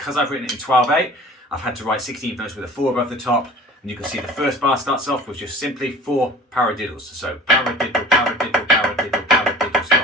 I've written it in 12/8, I've had to write 16th notes with a 4 above the top. And you can see the first bar starts off with just simply 4 paradiddles. So paradiddle, paradiddle, paradiddle, paradiddle,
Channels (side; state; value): both; normal; correlation 0.42